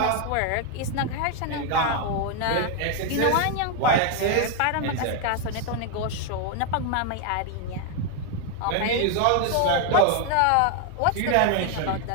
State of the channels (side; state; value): both; different; correlation 0.00